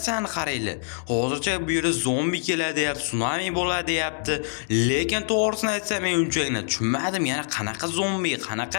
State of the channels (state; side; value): silent; right; digital silence